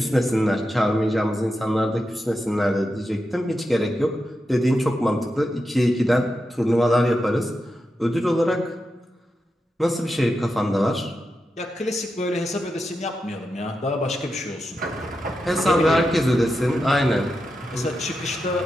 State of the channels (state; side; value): normal; both; correlation 0.88